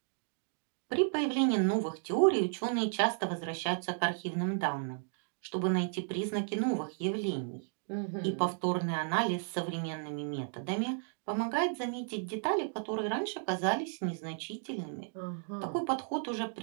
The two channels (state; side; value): silent; left; 55 dB below the other